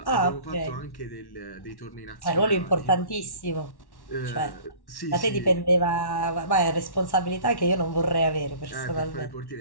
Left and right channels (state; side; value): late; right; 1.1 ms